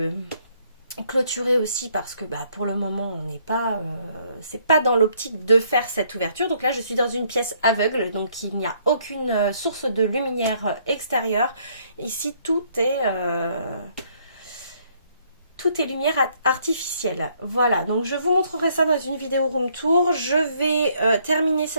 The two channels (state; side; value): inverted; both; correlation -0.67